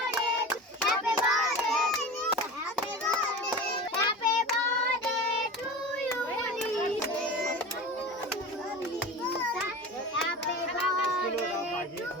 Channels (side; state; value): both; normal; correlation 0.32